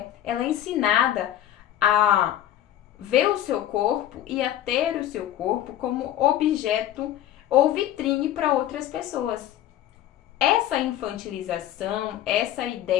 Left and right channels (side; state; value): right; quieter; 12.2 dB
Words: ela é ensinada a ver o seu corpo e a ter o seu corpo como objeto ou vitrine para outras pessoas. Essa infantilização, essa